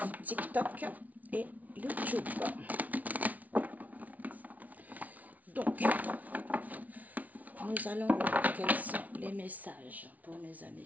TikTok et YouTube? Donc, nous allons voir quels sont les messages pour mes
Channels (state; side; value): late; left; 0.073 ms